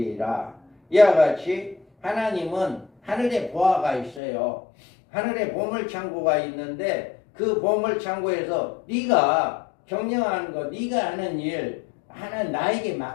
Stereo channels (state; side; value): drops out; right; at 4.2 s